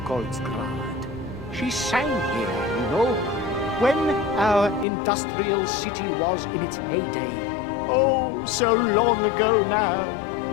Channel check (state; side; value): drops out; right; at 4.9 s